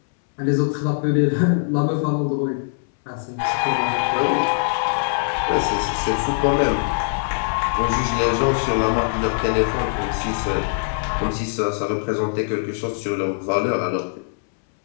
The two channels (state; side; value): silent; right; 64 dB below the other